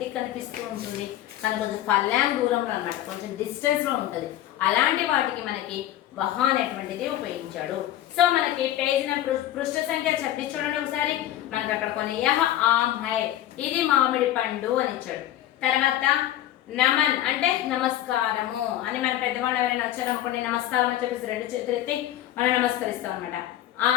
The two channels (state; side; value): quieter; right; 13.1 dB